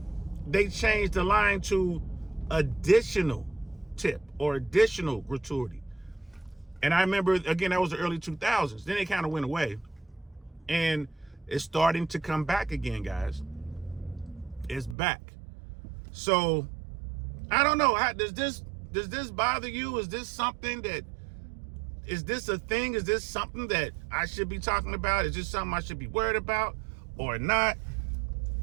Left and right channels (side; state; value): left; drops out; at 15.0 s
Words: they changed the line to additional tip or additional gratuity. And I remember, again, that was the early 2000s. Then it kind of went away. And it's starting to come back again, guys. It's back. So, I don't know. Does this bother you? Is this a thing? Is this something that I should be talking about? Is this something I should be worried about or not?